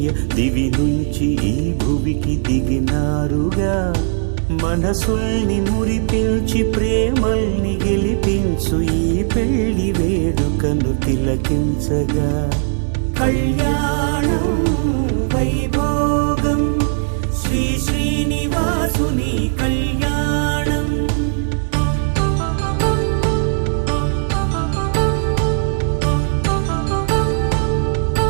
దివి నుంచి ఈ భువికి దిగినారుగా మనసుల్ని మురిపించి ప్రేమల్ని గెలిపించు ఈ పెళ్లి వేడుకను తిలకించగా కళ్యాణం వైభోగం శ్రీ శ్రీనివాసుని కళ్యాణం.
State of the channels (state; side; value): silent; left; digital silence